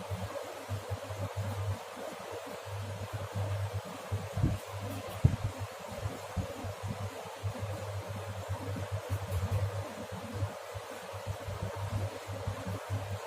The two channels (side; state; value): both; identical; correlation 1.00